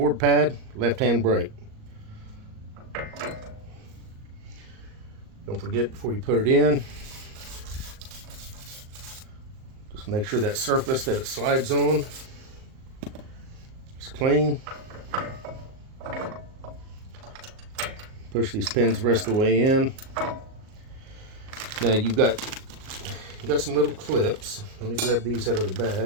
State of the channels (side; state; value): left; late; 38 ms